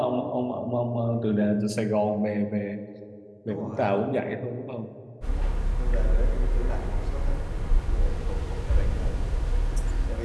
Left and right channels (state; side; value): identical; both; correlation 1.00